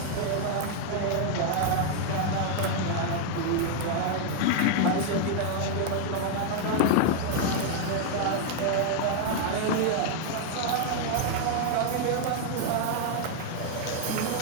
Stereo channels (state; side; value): different; both; correlation 0.00